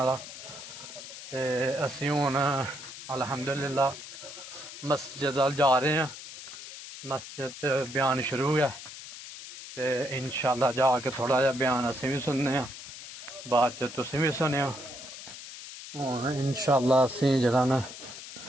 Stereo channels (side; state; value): left; noise; hiss, 13 dB below the sound